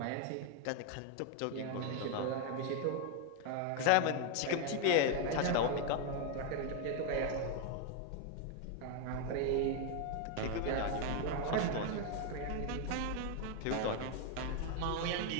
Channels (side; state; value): both; different; correlation 0.01